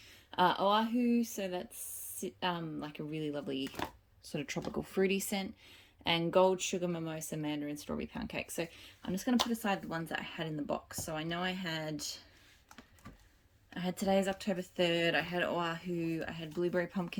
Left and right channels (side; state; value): both; identical; correlation 1.00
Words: Oahu, so that's like a really lovely sort of tropical fruity scent. And Gold Sugar Mimosa Mandarin Strawberry Pancakes. So I'm just going to put aside the ones that I had in the box. So I know I had Today's October 3rd, I had Oahu, I had Blueberry